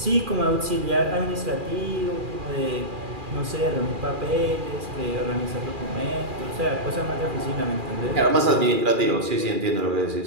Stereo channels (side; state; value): left; late; 2.4 ms